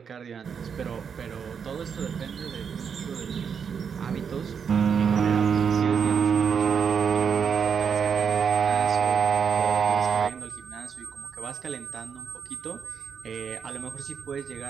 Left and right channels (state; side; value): quieter; left; 6.8 dB